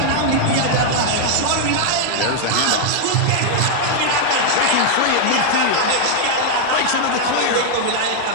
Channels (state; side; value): different; both; correlation 0.00